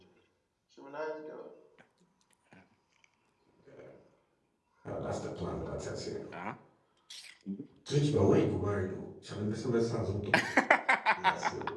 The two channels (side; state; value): both; identical; correlation 1.00